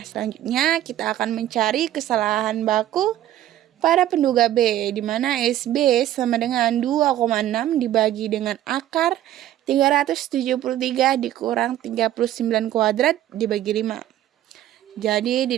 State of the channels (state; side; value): quieter; left; 12.8 dB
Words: kita akan mencari kesalahan baku pada penduga B, di mana SB sama dengan 2,6 dibagi dengan akar 373 dikurang 39 kuadrat dibagi 5. Jadi